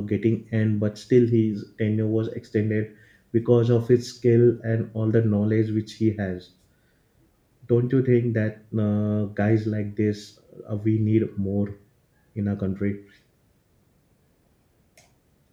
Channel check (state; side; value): identical; both; correlation 1.00